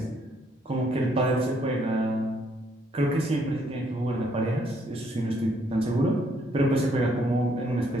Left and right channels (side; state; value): both; normal; correlation 0.70